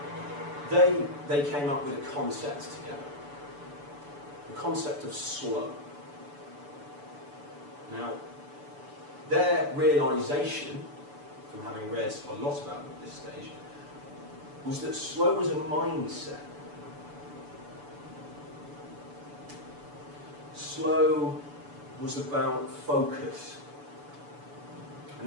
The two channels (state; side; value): late; left; 6.9 ms